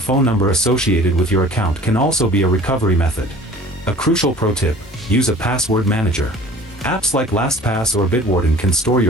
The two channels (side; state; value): both; normal; correlation 0.46